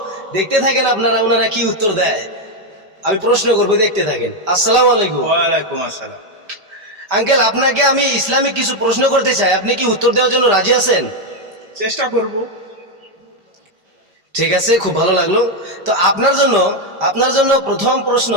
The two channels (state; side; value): late; left; 5.1 ms